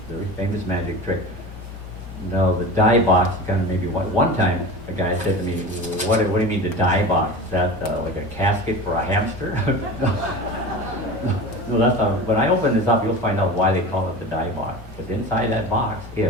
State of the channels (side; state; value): both; normal; correlation 0.32